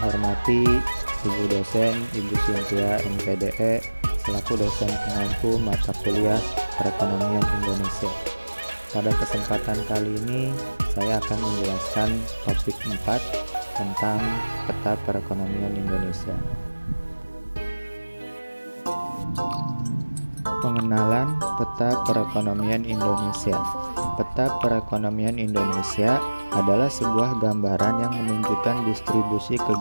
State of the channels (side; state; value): both; inverted; correlation -1.00